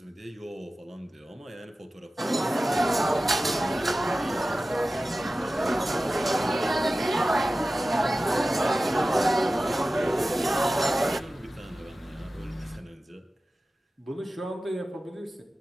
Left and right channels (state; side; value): normal; both; correlation 0.95